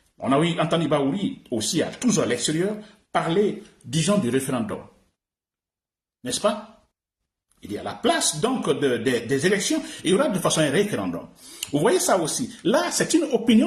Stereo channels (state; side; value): identical; both; correlation 1.00